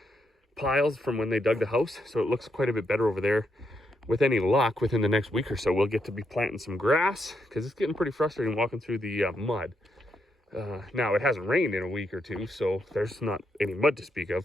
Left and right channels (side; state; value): both; normal; correlation 0.80